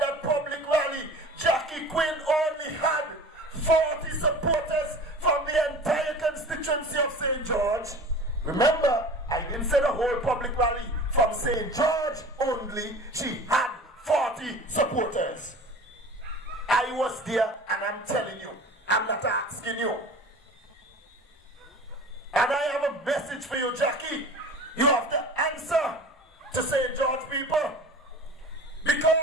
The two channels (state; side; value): normal; both; correlation 0.39